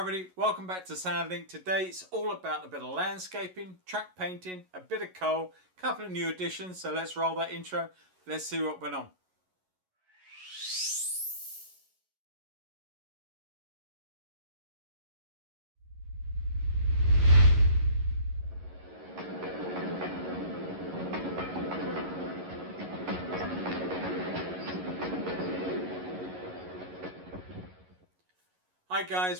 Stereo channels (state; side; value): late; left; 11 ms